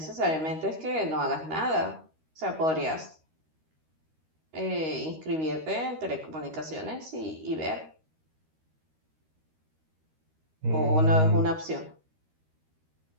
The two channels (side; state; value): left; late; 13 ms